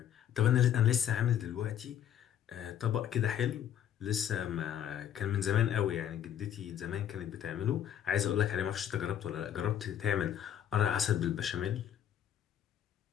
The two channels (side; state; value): right; quieter; 10.1 dB